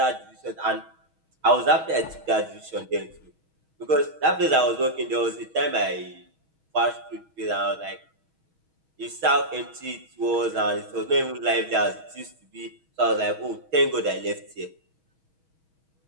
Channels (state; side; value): late; left; 6.3 ms